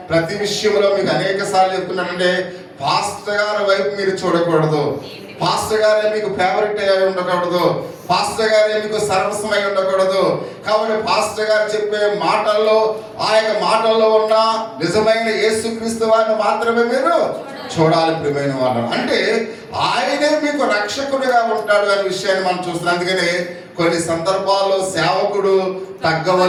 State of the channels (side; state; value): both; identical; correlation 1.00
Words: ప్రతి విషయంలో మీకు అనేక సార్లు చెప్తున్నానంటే, పాస్టర్ గారి వైపు మీరు చూడకూడదు, పాస్టర్ గారే మీకు ఫేవరెట్ అయి ఉండకూడదు, పాస్టర్ గారే మీకు సర్వస్వమై ఉండకూడదు. కాబట్టి పాస్టర్ గారు చెప్పే మాటల్లో, ఆ యొక్క మాటల్లో ఉన్న నిజమైన యేసుక్రీస్తు వారిని మాత్రమే మీరు చూడాలి ప్రియమైన వాళ్ళు. అంటే ఆయనే మీకు రక్షకుడిగా ఉంటాడు అనే విషయాన్ని మనం చూస్తున్నాం. అందుకని కొన్ని సందర్భాల్లో సేవకుడు